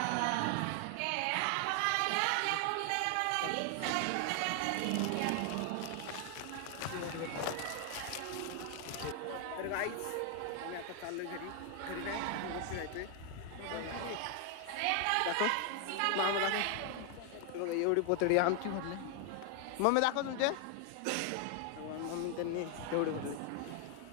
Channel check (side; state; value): both; different; correlation 0.00